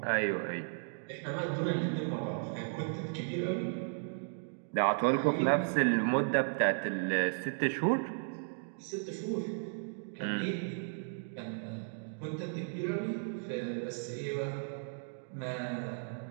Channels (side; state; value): left; silent; digital silence